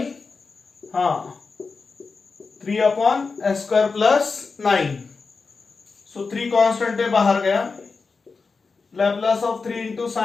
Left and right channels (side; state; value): right; quieter; 4.5 dB